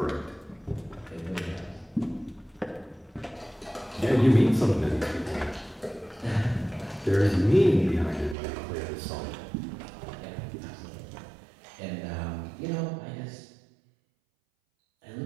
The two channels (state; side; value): drops out; left; at 8.3 s